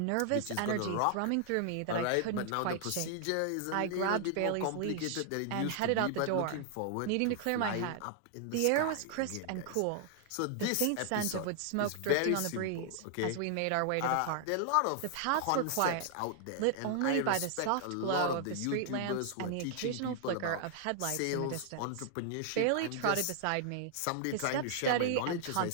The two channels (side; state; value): both; different; correlation 0.00